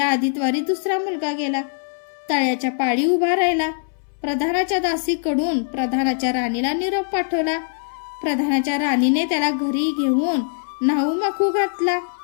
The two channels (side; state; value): right; silent; 63 dB below the other